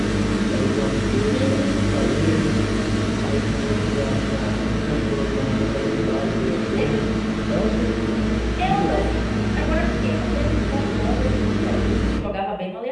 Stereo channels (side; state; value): both; identical; correlation 1.00